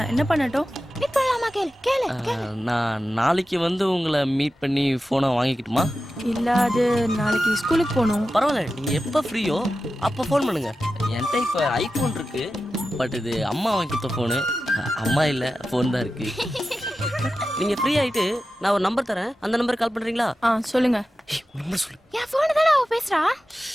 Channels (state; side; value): normal; both; correlation 0.93